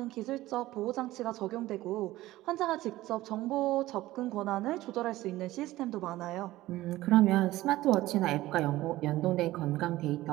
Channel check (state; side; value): quieter; left; 16.7 dB